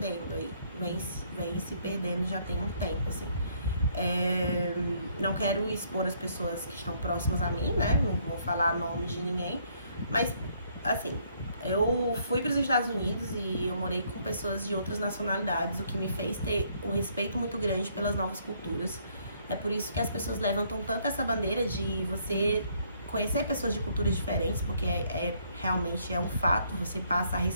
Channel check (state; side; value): inverted; both; correlation -0.67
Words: aí, vem se perdendo já tem um tempo, assim. Não quero expor as pessoas que estão próximas a mim, né? Não vou falar nome de ninguém. Mas, assim, eu fui para os Estados Unidos e eu morei com pessoas de outras nacionalidades, o que me fez ter um respeito muito grande pelas novas culturas. É por isso que as pessoas levantam tanto essa bandeira de você conhecer pessoas de culturas diferentes, porque realmente é um fato, você passa a